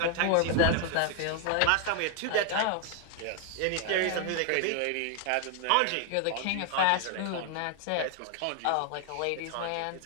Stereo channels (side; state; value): both; different; correlation 0.00